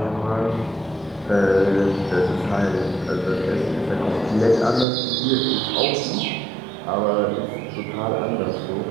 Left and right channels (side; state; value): left; drops out; at 4.9 s